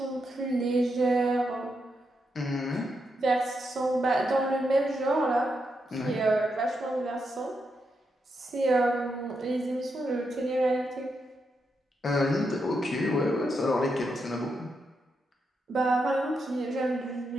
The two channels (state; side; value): normal; both; correlation 0.83